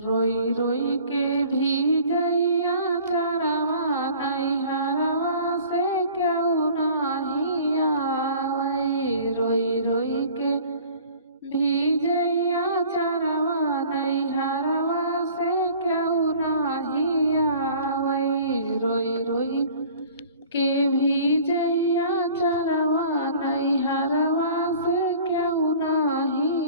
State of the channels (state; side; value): inverted; both; correlation -0.48